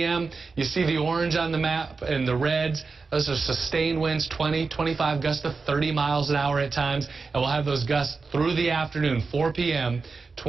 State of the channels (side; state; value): left; quieter; 4.5 dB